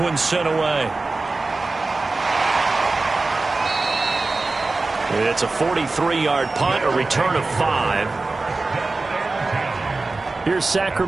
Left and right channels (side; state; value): left; quieter; 3.5 dB